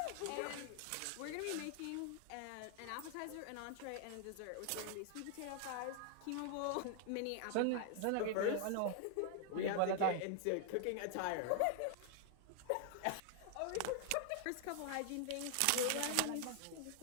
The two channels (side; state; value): both; different; correlation 0.00